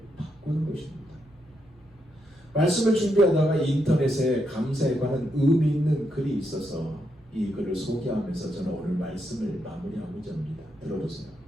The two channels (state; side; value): normal; both; correlation 0.81